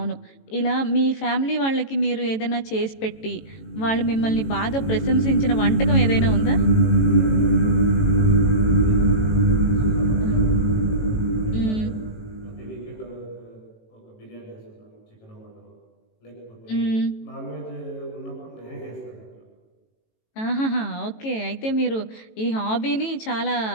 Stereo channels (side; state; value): right; late; 18 ms